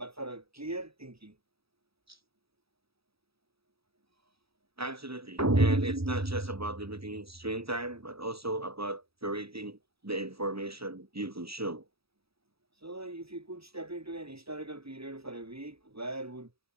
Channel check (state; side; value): late; left; 0.77 ms